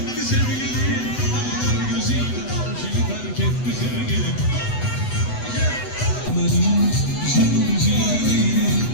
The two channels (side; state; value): right; late; 8.0 ms